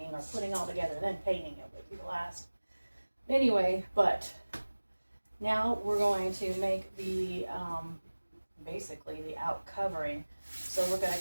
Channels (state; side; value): inverted; both; correlation -1.00